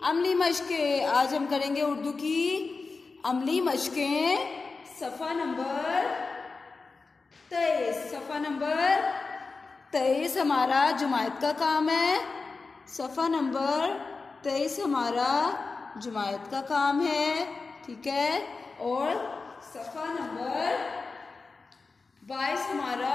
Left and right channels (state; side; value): quieter; right; 4.2 dB